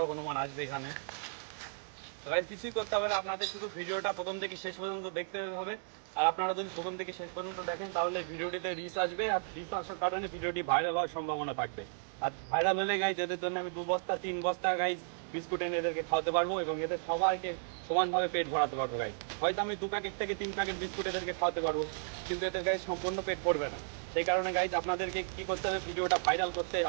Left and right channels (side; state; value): left; silent; digital silence